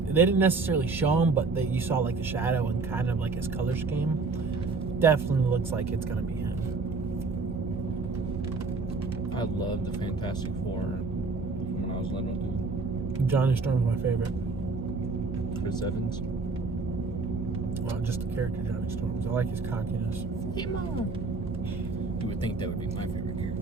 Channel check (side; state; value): left; quieter; 4.0 dB